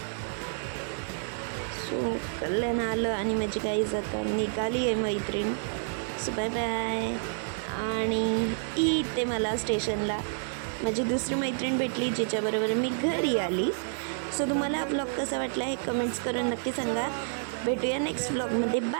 सो कल्याण आलं आणि माझी गाईज आता निघाली आहे मैत्रीण. So bye bye. आणि इथे मला स्टेशनला माझी दुसरी मैत्रीण भेटली जिच्याबरोबर मी घरी आली. सो तुम्हाला हा ब्लॉग कसा वाटला हे कमेंट्स करून नक्की सांगा. भेटूया नेक्स्ट ब्लॉगमध्ये.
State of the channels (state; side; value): silent; left; digital silence